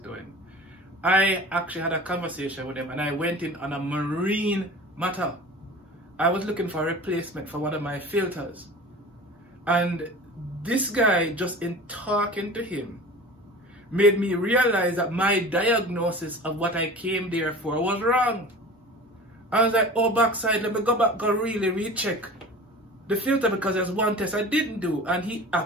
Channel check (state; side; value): normal; both; correlation 0.38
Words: I actually had a conversation with him and I went in on a marine matter. I was looking for a replacement for one of my filters. And this guy, just in talking to him, made me realize that my diagnosis of what I came there for was wrong. I was like, oh, backside, let me go back, go really recheck the filter because there's one test I didn't do. And he